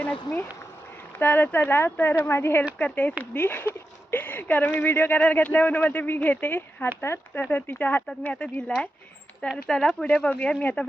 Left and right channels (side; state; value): both; normal; correlation 0.90